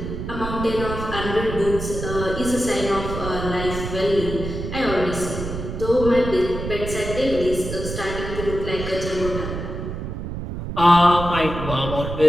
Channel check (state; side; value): noise; right; rumble, 6 dB below the sound